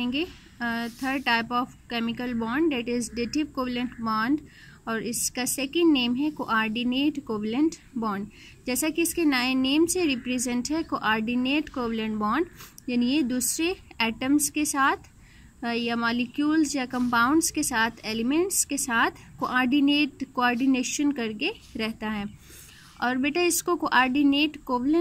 third type of chemical bond, that is dative covalent bond, और इसका सेकंड नेम है कोऑर्डिनेट कोवलेंट बॉन्ड। जैसा कि इसके नए नेम से रिप्रेजेंट है, कोऑर्डिनेट कोवलेंट बॉन्ड यानी ये दूसरे एटम्स के साथ या मॉलिक्यूल्स या कंपाउंड्स के साथ, एलिमेंट्स के साथ कोऑर्डिनेशन करके रहता है। और बेटा इसको कोऑर्डिनेट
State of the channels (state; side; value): identical; both; correlation 1.00